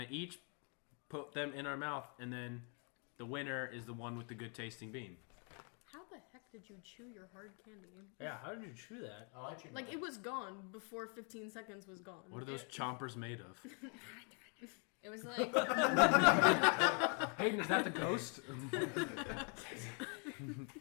each put them in our mouth, and then the winner is the one with the good tasting bean. How the heck did you chew your hard candy? Yeah, how did you chew that? I'll let you know. Like, it was gone before 15 seconds was gone. What are those chompers made of? It was like Hayden, is that the ghost?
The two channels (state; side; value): quieter; right; 38.4 dB